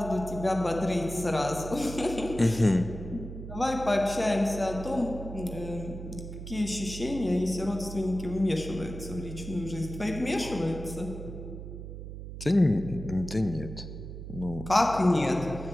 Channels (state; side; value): noise; right; hum, 10 dB below the sound